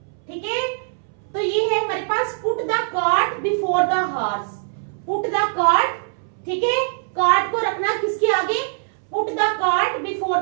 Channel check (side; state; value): left; silent; 64 dB below the other